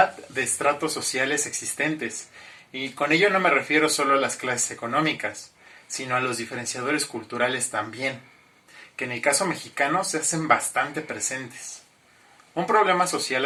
de estratos sociales existentes. Y con ello no me refiero solo a las clases económicas, sino a los diferenciadores culturales también, que en el caso mexicano se hacen bastante presentes. Un problema social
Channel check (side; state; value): both; identical; correlation 1.00